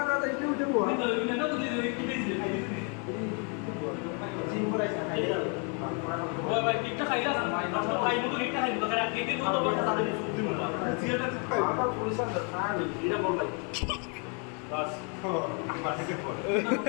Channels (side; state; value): right; quieter; 36.3 dB